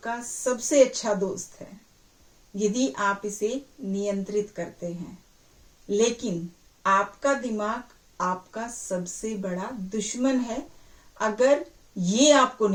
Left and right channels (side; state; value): both; identical; correlation 1.00